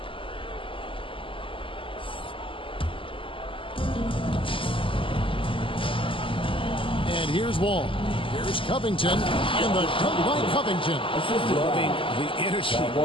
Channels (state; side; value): late; right; 0.25 ms